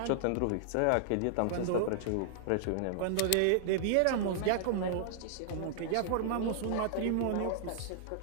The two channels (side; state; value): both; different; correlation -0.01